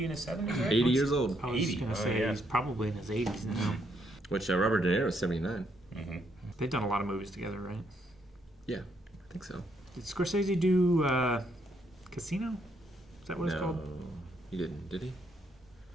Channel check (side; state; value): both; normal; correlation 0.74